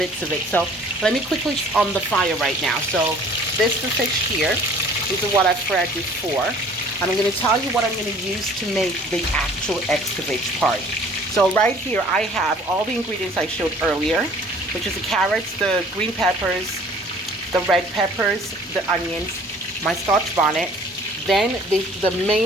of it. So let me quickly on the fire right now. So this is the fish here. These are what I've fried before. And I'm going to tell you what I'm going to use to make the actual escovitch part. So right here I have all the ingredients I showed earlier, which is the carrots, the green peppers, the red peppers, the onions, my scotch bonnet, then the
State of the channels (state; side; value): normal; both; correlation 0.52